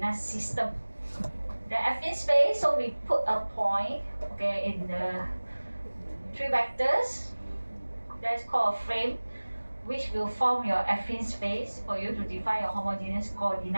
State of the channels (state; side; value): inverted; both; correlation -1.00